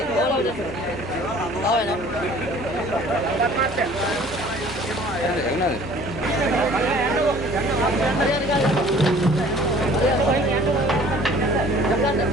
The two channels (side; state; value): right; noise; hum, 21 dB below the sound